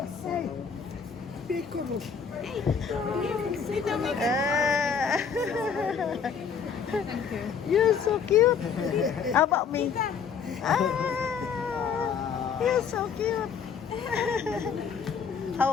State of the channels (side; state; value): right; quieter; 6.6 dB